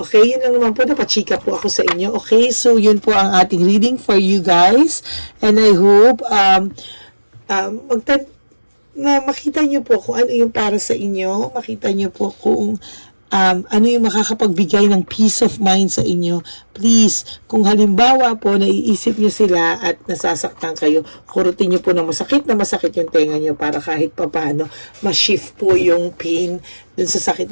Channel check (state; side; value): inverted; both; correlation -1.00